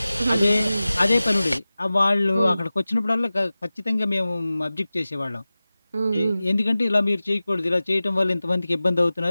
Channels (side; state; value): both; inverted; correlation -0.97